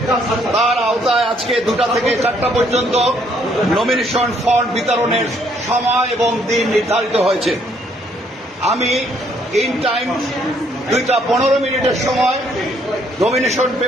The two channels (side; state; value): both; normal; correlation 0.67